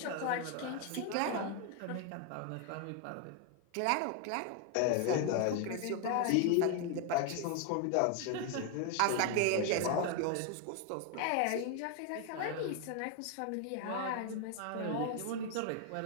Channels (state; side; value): different; both; correlation 0.01